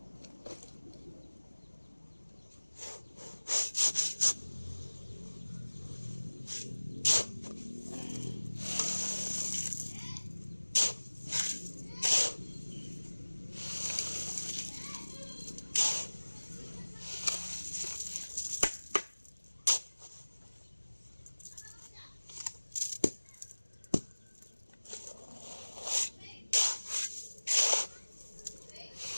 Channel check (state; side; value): inverted; both; correlation -1.00